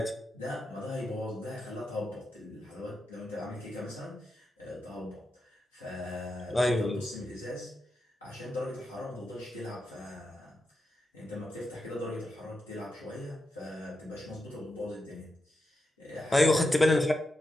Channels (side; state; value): both; normal; correlation 0.87